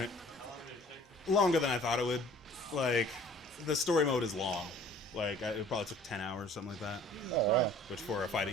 Longer than I thought it would. Like, the story mode is long. Like, it probably took 10 hours, something like that. Oh yeah. Which for a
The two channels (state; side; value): normal; both; correlation 0.51